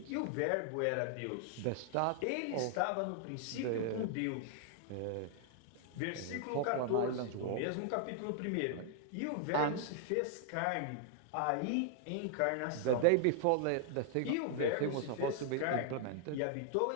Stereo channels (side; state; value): both; different; correlation 0.00